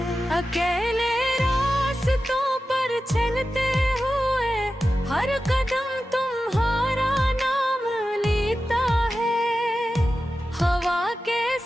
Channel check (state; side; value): normal; both; correlation 0.93